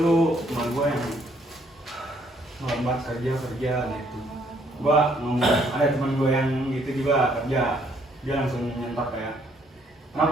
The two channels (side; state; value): both; normal; correlation 0.67